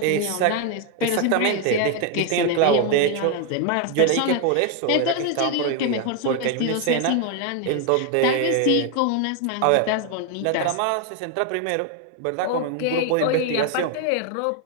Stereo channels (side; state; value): both; different; correlation 0.01